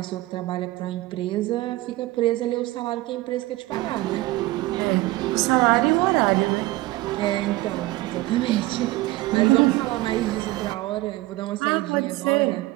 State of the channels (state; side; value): quieter; left; 18.5 dB